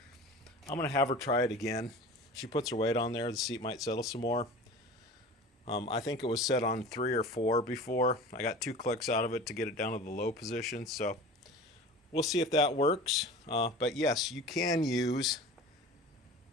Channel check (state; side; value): normal; both; correlation 0.38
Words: I'm going to have her try it again. She puts her weight on there, the seat might settle some more. I think it was set on 3 or 4 before. I got 2 clicks out of it to get it down to the low position, so we'll see if that works. But yes, you can use,